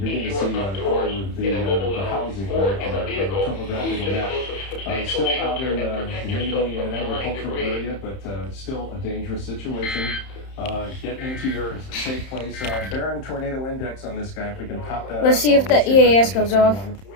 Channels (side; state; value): right; late; 31 ms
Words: to see all of the housing there on the topographical map. Still out in mainly an agricultural area, but still a dangerous situation. Get into your safe place. Barron tornado index on this guy, if we can pop that. Let's see if the EAS goes off. At